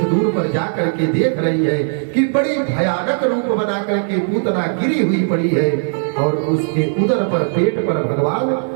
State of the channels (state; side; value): silent; left; 66 dB below the other